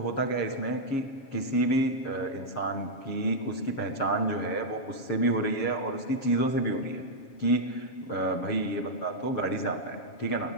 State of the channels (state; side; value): late; right; 7.3 ms